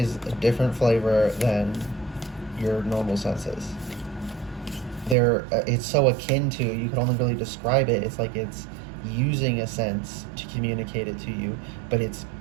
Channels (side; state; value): left; drops out; at 5.2 s